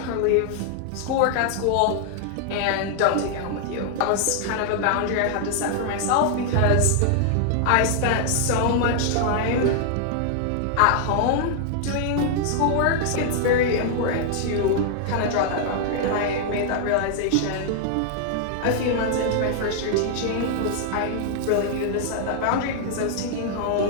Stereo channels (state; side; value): different; both; correlation -0.01